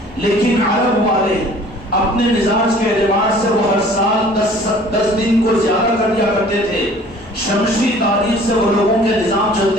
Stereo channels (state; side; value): normal; both; correlation 0.51